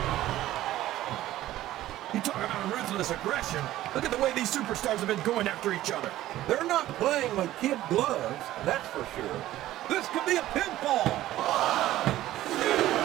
You talk about ruthless aggression. Look at the way these superstars have been going after each other. They're not playing with kid gloves, that's for sure. This could be a pinfall.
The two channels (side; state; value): left; quieter; 14.6 dB